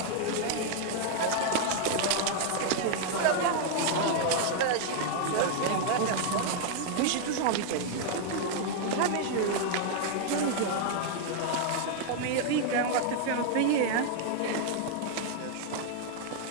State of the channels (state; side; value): different; both; correlation 0.00